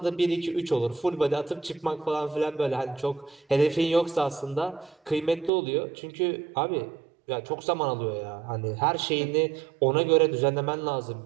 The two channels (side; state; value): left; drops out; at 5.5 s